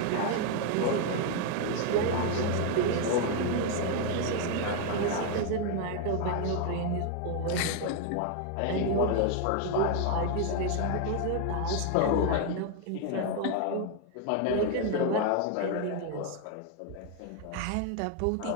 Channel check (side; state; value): both; different; correlation 0.01